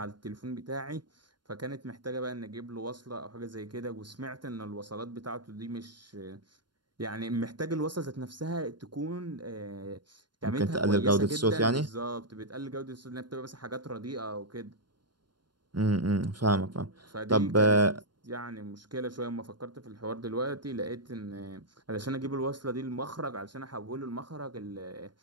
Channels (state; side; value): late; left; 0.71 ms